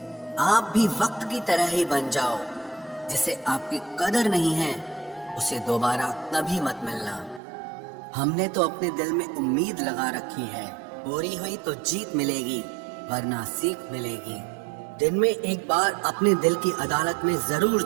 आप भी वक्त की तरह ही बन जाओ। जिसे आपकी कदर नहीं है उसे दोबारा कभी मत मिलना। हमने तो अपने दिल में उम्मीद लगा रखी है, पूरी हुई तो जीत मिलेगी वरना सीख मिलेगी। दिन में एक बार अपने दिल की अदालत में जरूर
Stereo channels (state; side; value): drops out; left; at 7.4 s